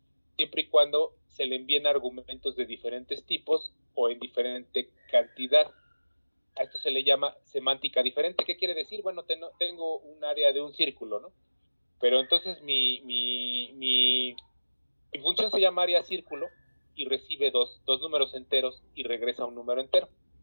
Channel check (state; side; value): inverted; both; correlation -1.00